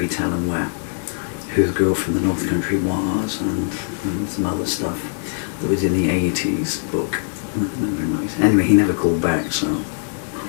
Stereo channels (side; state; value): right; silent; 65 dB below the other